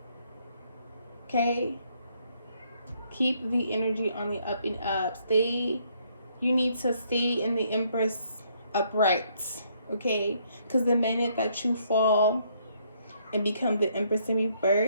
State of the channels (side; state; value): both; inverted; correlation -0.69